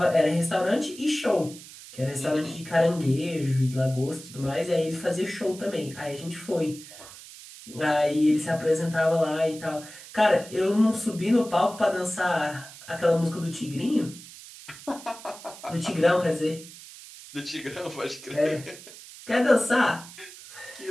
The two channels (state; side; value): noise; right; hiss, 17 dB below the sound